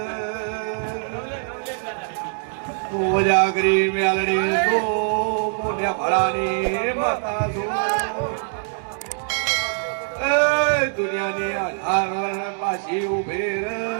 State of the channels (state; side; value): silent; left; 62 dB below the other